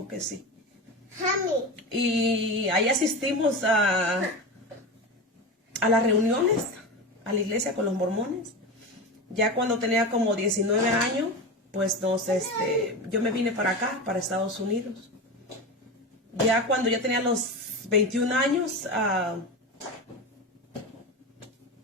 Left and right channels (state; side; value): normal; both; correlation 0.23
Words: que sí, y ahí asistimos a las reuniones, a la iglesia con los mormones. Ya cuando tenía como 19 años, pues yo me vine para acá, para Estados Unidos. Ya cuando ya tenía los 21 años,